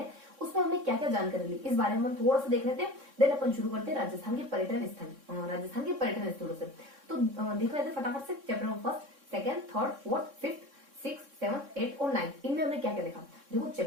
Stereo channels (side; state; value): left; late; 3.6 ms